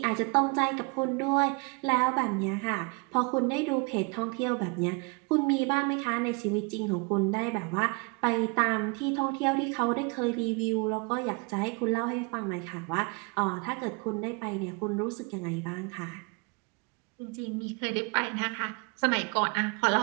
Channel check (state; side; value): quieter; left; 30.6 dB